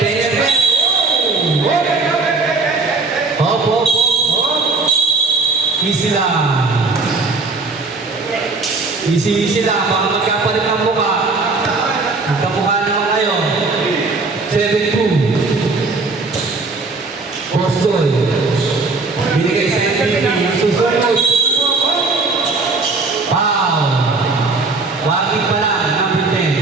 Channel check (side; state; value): left; quieter; 3.8 dB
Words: Penetret. Hop, hop, hop, hop. Easy lang. Easy lang. Baka magkapalit ng mukha. Magkamukha naman kayo. 7-2. Boston. Binigay sa MVP. Susunod. Wow. Warning pa lang. Number